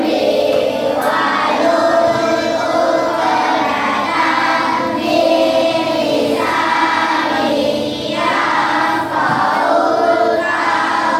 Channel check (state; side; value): identical; both; correlation 1.00